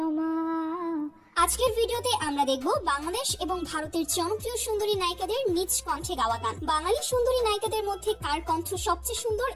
আজকের ভিডিওতে আমরা দেখব বাংলাদেশ এবং ভারতের জনপ্রিয় সুন্দরী নায়িকাদের নিজ কণ্ঠে গাওয়া গান। বাঙালি সুন্দরী নায়িকাদের মধ্যে কার কণ্ঠ সবচেয়ে সুন্দর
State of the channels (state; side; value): identical; both; correlation 1.00